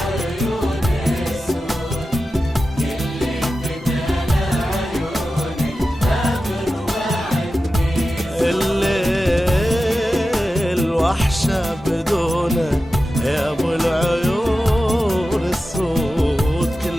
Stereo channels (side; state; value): both; normal; correlation 0.93